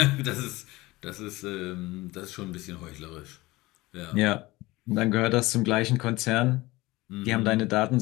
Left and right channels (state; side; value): quieter; right; 20.3 dB